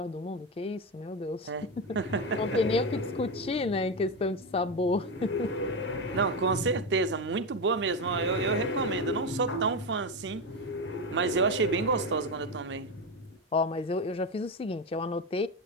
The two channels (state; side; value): normal; both; correlation 0.14